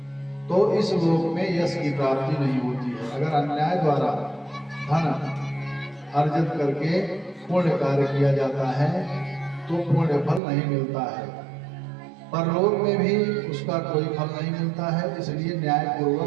तो इस लोक में यश की प्राप्ति नहीं होती है। अगर अन्याय द्वारा धन अर्जित करके पुण्य कार्य किया जाता है तो पुण्य फल नहीं मिलता है, परलोक में भी उसका कोई फल नहीं मिलता है। इसलिए न्याय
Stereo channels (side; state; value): left; drops out; at 10.4 s